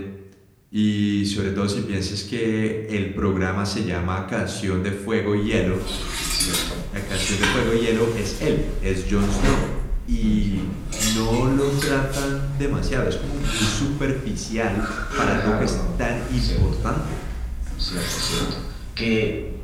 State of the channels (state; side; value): identical; both; correlation 1.00